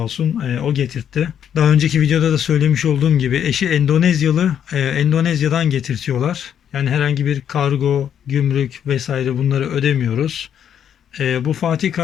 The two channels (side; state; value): right; quieter; 9.0 dB